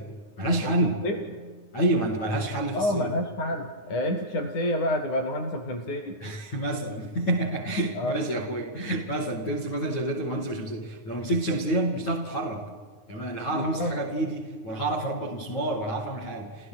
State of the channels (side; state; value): right; late; 9.6 ms